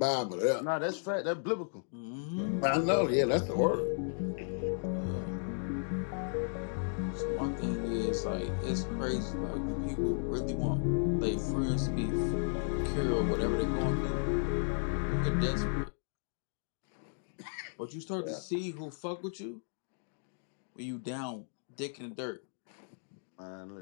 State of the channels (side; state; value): right; silent; digital silence